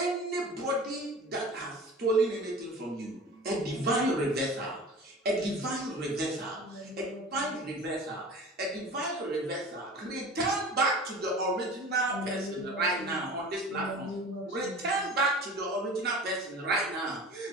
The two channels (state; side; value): normal; both; correlation 0.38